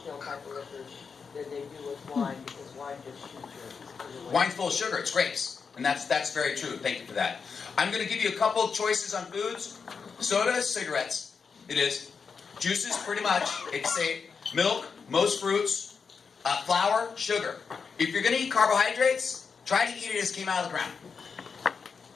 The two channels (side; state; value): right; quieter; 5.6 dB